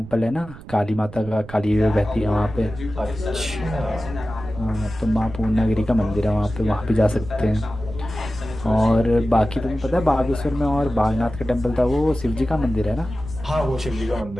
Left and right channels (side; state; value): right; noise; rumble, 15 dB below the sound